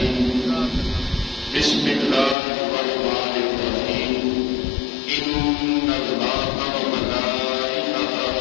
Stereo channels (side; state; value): right; drops out; at 2.4 s